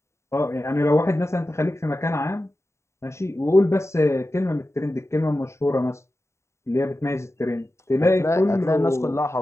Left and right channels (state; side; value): late; right; 0.14 ms